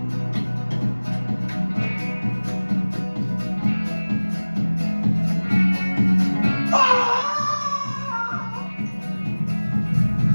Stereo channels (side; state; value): both; inverted; correlation -1.00